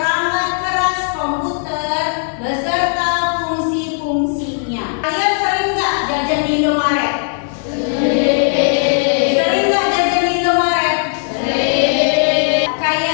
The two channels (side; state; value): right; silent; 55 dB below the other